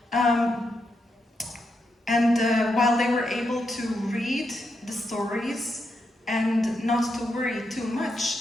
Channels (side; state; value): both; normal; correlation 0.83